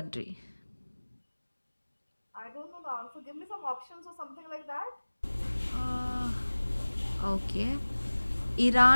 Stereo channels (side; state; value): both; inverted; correlation -1.00